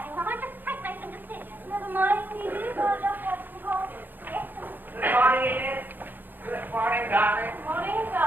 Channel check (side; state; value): left; late; 0.090 ms